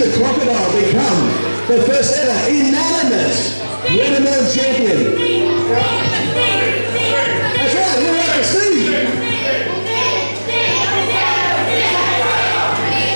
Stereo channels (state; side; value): inverted; both; correlation -1.00